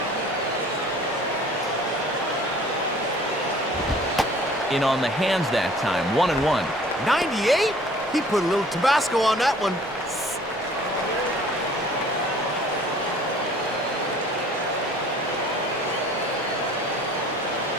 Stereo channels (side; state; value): both; normal; correlation 0.51